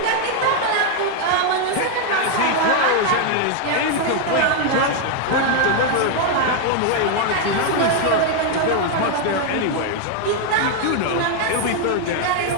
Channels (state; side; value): different; both; correlation 0.00